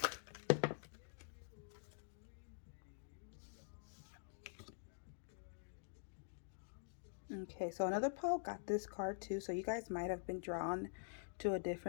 Okay, so another pile got this card too. So you guys might have been drawn to a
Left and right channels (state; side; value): silent; right; digital silence